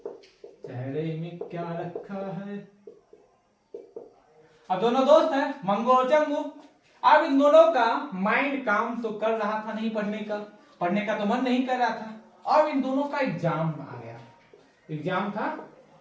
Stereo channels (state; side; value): identical; both; correlation 1.00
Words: चेहरे में क्या रखा है। अब दोनों दोस्त हैं मंगू और चंगू। अब इन दोनों का माइंड काम तो कर रहा था नहीं, पढ़ने का तो मन नहीं कर रहा था। अब इन दोनों का एग्जाम आ गया, एग्जाम था